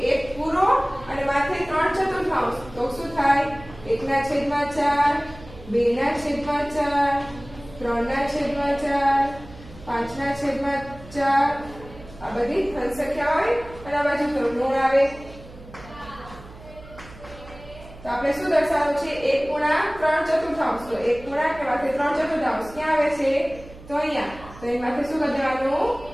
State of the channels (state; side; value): noise; right; hum, 18 dB below the sound